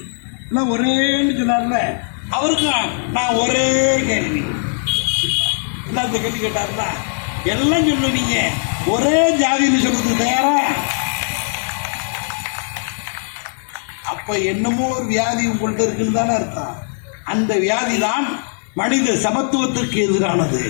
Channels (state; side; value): silent; right; digital silence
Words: எல்லாம் ஒரேன்னு சொன்னார்ல. அவருக்கு நான் ஒரே கேள்வி, என்ன இந்த கேள்வி கேட்டார்னா, எல்லாம் சொல்லுவீங்க, ஒரே ஜாதின்னு சொல்றது தயாரா? அப்ப என்னமோ ஒரு வியாதி உங்கள்கிட்ட இருக்குன்னு தானே அர்த்தம். அந்த வியாதி தான் மனித சமத்துவத்திற்கு எதிரானது.